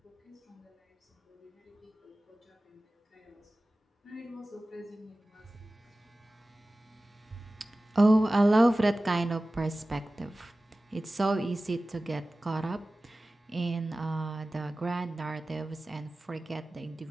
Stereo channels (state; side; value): normal; both; correlation 0.96